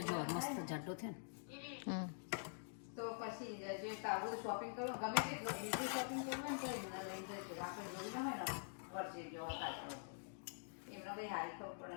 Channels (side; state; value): right; silent; digital silence